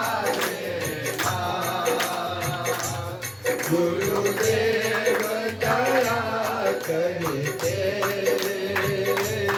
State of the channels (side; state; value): both; identical; correlation 1.00